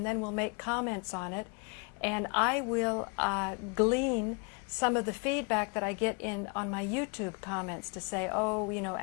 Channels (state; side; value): quieter; right; 34.5 dB